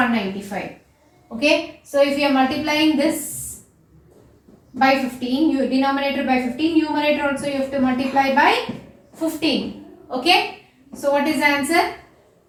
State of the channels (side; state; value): both; identical; correlation 1.00